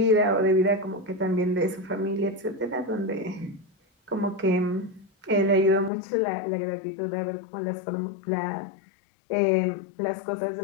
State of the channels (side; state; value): right; drops out; at 5.9 s